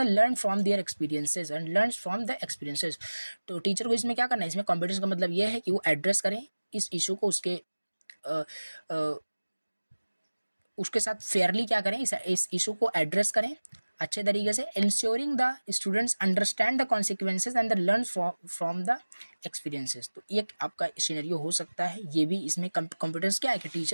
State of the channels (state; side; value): inverted; both; correlation -1.00